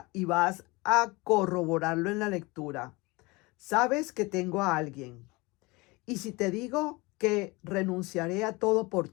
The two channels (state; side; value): quieter; right; 24.4 dB